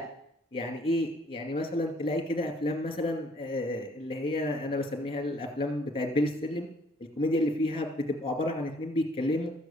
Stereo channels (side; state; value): both; normal; correlation 0.62